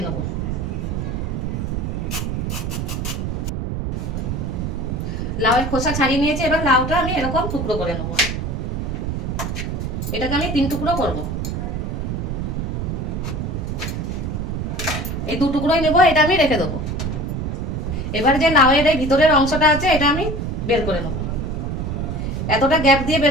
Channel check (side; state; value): right; noise; rumble, 2 dB below the sound